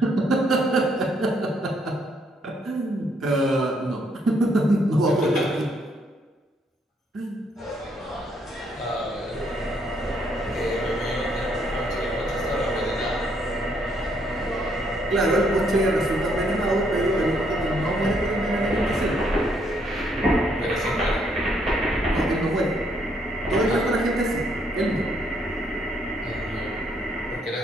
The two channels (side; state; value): both; normal; correlation 0.71